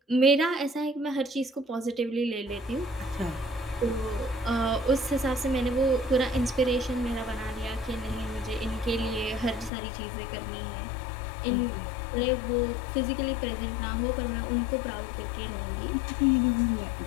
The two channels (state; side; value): drops out; right; at 9.7 s